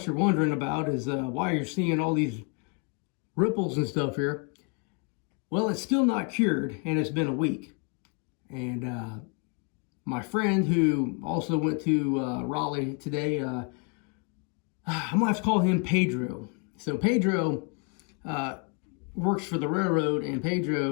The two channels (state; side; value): quieter; right; 36.0 dB